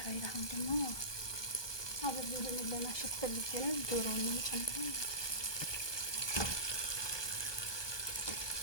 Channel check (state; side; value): late; right; 1.2 ms